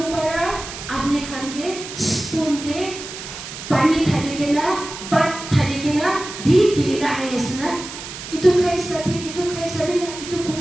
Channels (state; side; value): noise; right; hiss, 11 dB below the sound